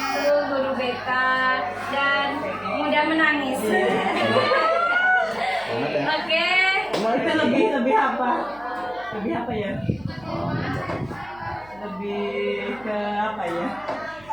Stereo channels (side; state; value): right; noise; hum, 25 dB below the sound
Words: guru BK dan mudah menangis. Oke. Itu lebih apa? Lebih apa ya? Lebih ke apa ya?